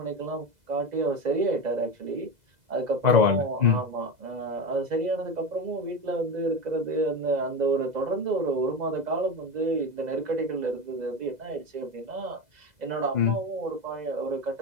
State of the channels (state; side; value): late; left; 2.0 ms